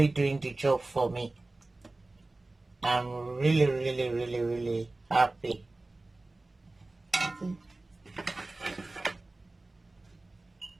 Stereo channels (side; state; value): left; quieter; 3.0 dB